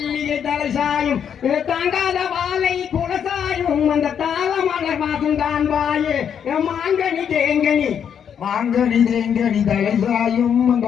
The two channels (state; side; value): quieter; right; 8.1 dB